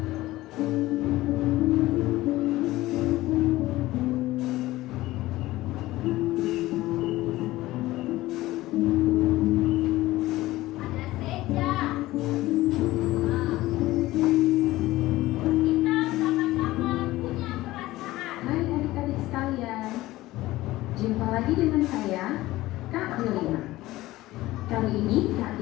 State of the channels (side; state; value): right; quieter; 17.4 dB